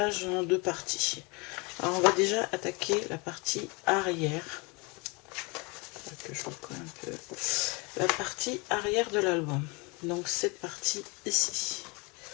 en deux parties. Alors on va déjà attaquer la partie arrière, que je recolle un peu, la partie arrière de l'album. Donc cette partie ici.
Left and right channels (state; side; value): quieter; right; 28.7 dB